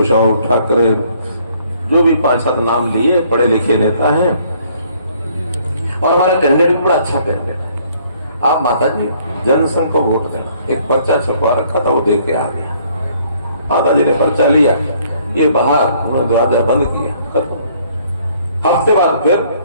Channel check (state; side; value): inverted; both; correlation -0.63